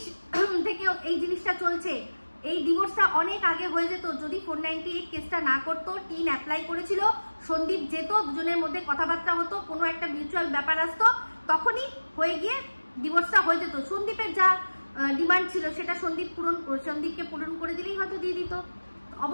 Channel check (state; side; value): inverted; both; correlation -1.00